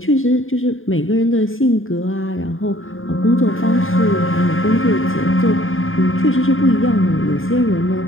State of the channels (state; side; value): late; right; 0.59 ms